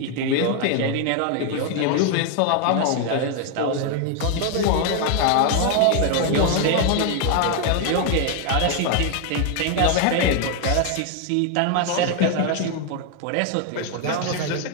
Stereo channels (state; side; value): different; both; correlation 0.01